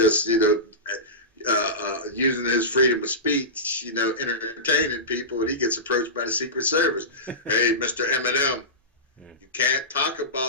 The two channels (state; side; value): normal; both; correlation -0.18